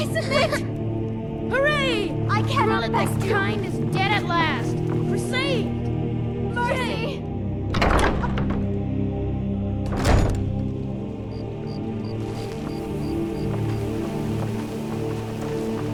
submit! Hooray! I cannot Gorilla, thank this you. kind is dead at last. We're saved! Mercy!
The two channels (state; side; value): identical; both; correlation 1.00